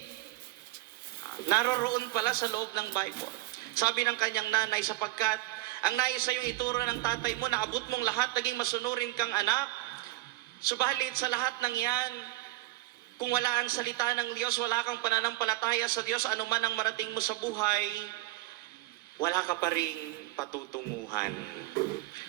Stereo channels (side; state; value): left; quieter; 19.6 dB